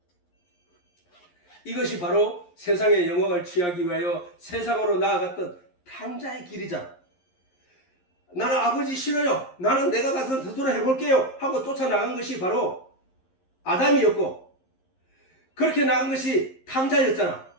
이것이 바로 세상의 영광을 취하기 위하여 세상으로 나아갔던 탕자의 길이잖아. 나는 아버지 싫어요. 나는 내가 가서 스스로 해볼게요. 하고 쫓아나간 것이 바로 아담이었고, 그렇게 나간 것이 탕자였잖아.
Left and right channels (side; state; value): right; late; 11 ms